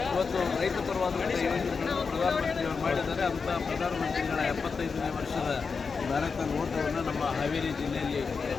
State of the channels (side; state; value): right; quieter; 5.1 dB